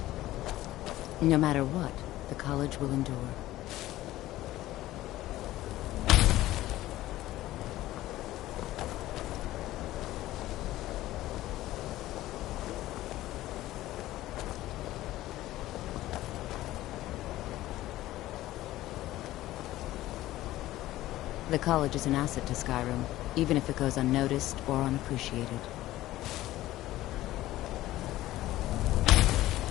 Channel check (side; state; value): right; quieter; 15.7 dB